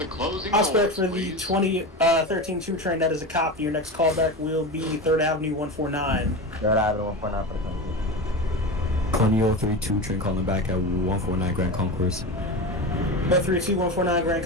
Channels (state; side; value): normal; both; correlation 0.24